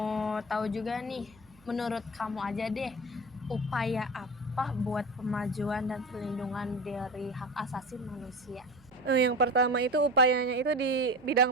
tahu juga nih, menurut kamu aja deh, upaya apa buat pemajuan dan perlindungan dari hak asasi manusia? Yang pertama itu upayanya itu di bidang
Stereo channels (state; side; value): noise; right; hum, 28 dB below the sound